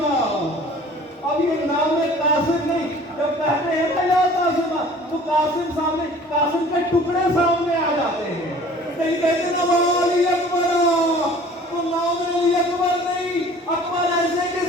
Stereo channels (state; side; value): normal; both; correlation 0.48